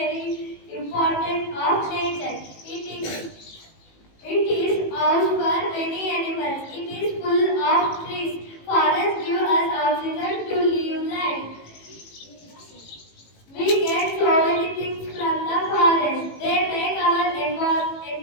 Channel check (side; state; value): right; late; 18 ms